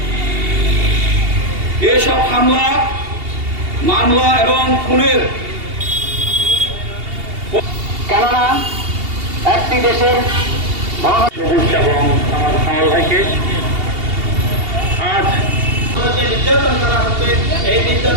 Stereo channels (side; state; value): left; late; 2.8 ms